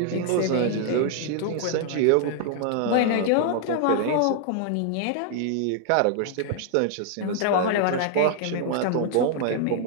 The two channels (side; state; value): both; different; correlation 0.00